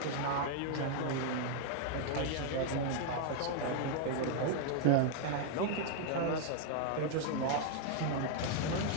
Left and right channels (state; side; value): different; both; correlation 0.00